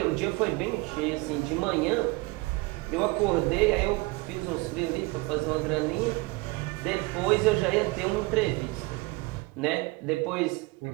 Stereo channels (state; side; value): quieter; left; 24.0 dB